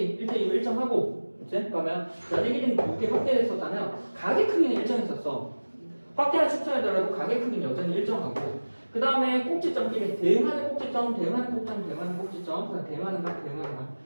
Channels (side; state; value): both; inverted; correlation -1.00